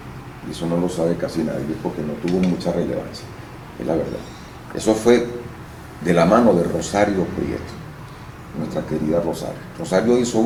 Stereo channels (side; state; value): both; identical; correlation 1.00